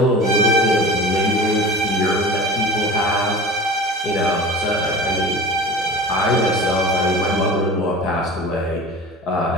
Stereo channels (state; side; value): normal; both; correlation 0.36